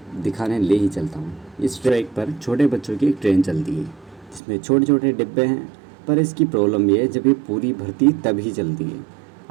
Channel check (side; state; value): left; drops out; at 4.4 s